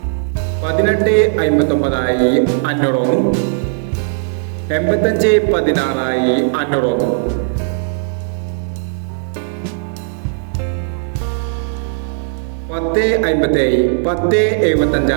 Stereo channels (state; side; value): silent; left; 68 dB below the other